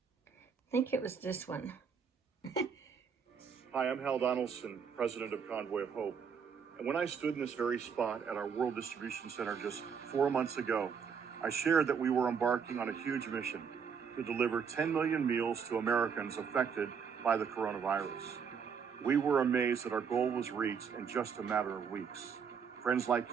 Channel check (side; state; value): left; quieter; 6.6 dB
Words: I think it was this one. Hi, I'm Hal Donaldson, president of Convoy of Hope. And when I stood in this very spot at our World Distribution Center just 4 months ago, I shared that we were embarking on a huge mission to deliver 10 million meals to Americans affected by the coronavirus. We were amazed that our goal was reached in just a matter of weeks. Friends